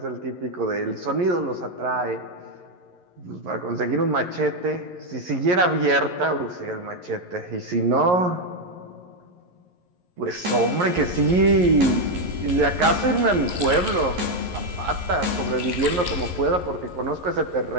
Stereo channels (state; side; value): late; left; 11 ms